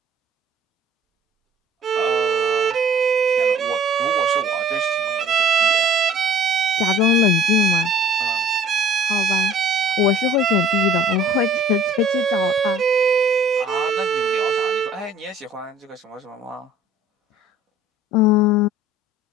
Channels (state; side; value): normal; both; correlation 0.52